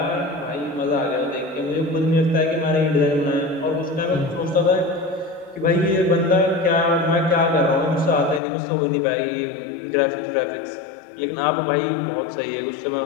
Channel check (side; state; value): right; drops out; at 8.4 s